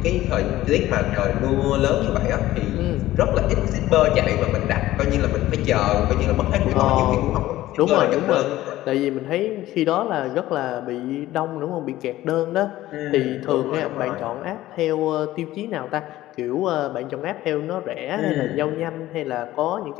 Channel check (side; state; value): right; quieter; 15.5 dB